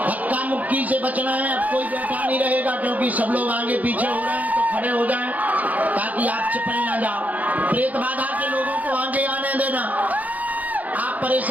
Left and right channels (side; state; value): left; late; 0.077 ms